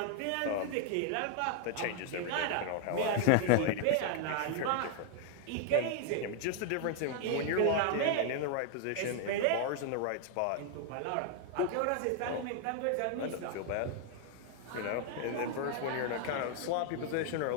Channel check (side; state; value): both; different; correlation 0.00